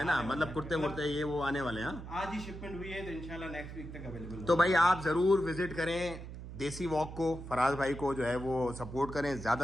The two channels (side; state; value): right; noise; hum, 11 dB below the sound